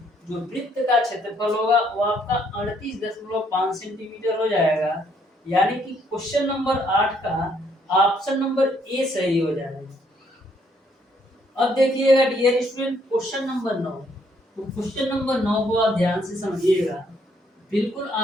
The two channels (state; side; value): normal; both; correlation 0.69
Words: जो वृत्त का क्षेत्रफल होगा वो आपका 38.5 सेंटीमीटर हो जाएगा। यानी कि क्वेश्चन नंबर 8 का ऑप्शन नंबर ए सही हो जाएगा। अब देखिएगा डियर स्टूडेंट क्वेश्चन नंबर 9। तो क्वेश्चन नंबर 9 को आप ध्यान से समझिएगा, बिल्कुल